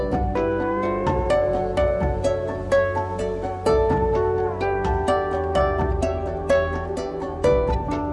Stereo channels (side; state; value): both; identical; correlation 1.00